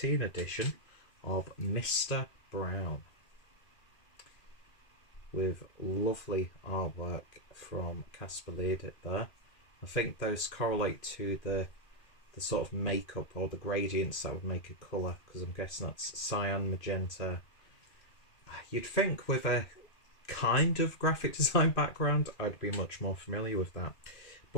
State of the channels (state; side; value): late; right; 2.5 ms